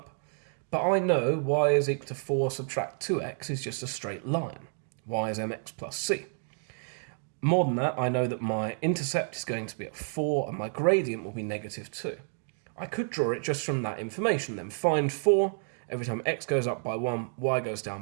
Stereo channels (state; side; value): silent; left; 58 dB below the other